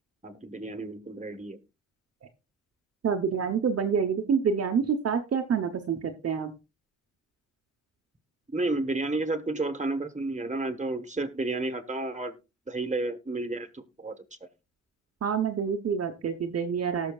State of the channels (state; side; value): quieter; left; 4.7 dB